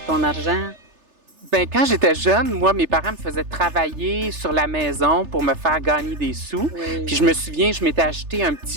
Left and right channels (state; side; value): late; left; 3.3 ms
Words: ton argent? Ben, quand j'étais jeune, moi, mes parents me faisaient travailler sur la maison pour me faire gagner des sous. Oui. Puis je me souviens, je m'étais acheté un